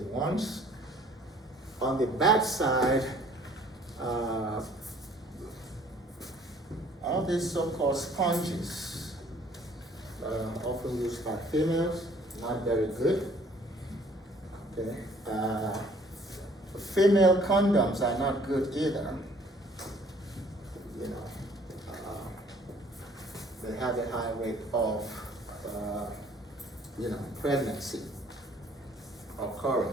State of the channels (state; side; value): normal; both; correlation 0.57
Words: ones. On the bad side, Uh, all these so-called sponges often used by females, not very good. Okay. Female condoms are not good either. You know, they have a high rate of, pregnancy